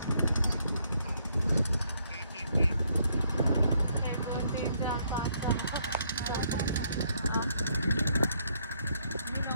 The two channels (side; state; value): both; inverted; correlation -0.72